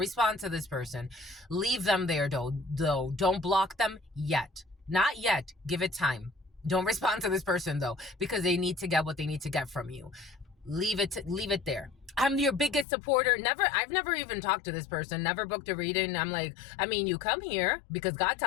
to this person. Leave them there though. Don't block them yet. Not yet. Give it time. Don't respond to this person though, because they need to get what they need to get from you. Leave it there. I'm your biggest supporter. I've never even talked to this person, never booked a reading. I'm like, I mean, you come here because God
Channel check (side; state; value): right; drops out; at 12.9 s